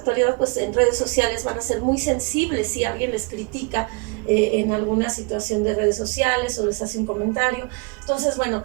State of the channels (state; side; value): quieter; left; 28.7 dB